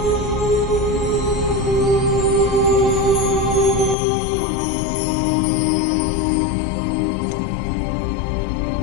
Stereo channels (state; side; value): drops out; right; at 4.0 s